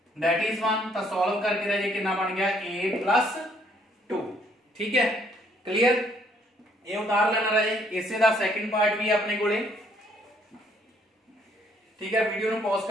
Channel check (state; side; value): normal; both; correlation 0.66